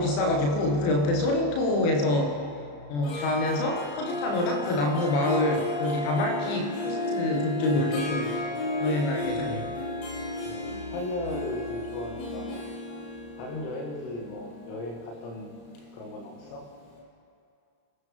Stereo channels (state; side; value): late; right; 34 ms